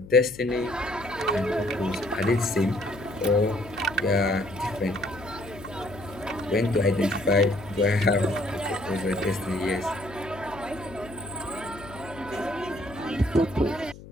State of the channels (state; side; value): noise; left; hum, 17 dB below the sound